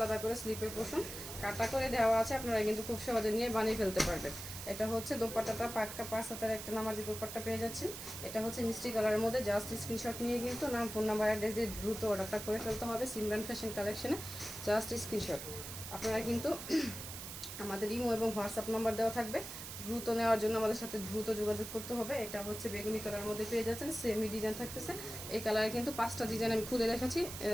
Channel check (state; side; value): noise; right; hiss, 9 dB below the sound